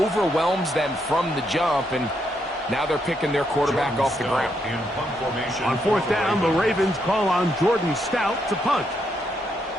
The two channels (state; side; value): normal; both; correlation 0.78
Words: them from the jump, and now they're picking their quarterback off the ground. On 4th down, the Ravens call on Jordan Stout to punt.